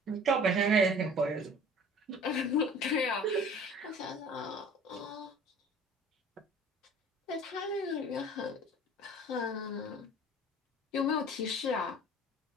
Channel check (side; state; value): both; normal; correlation 0.47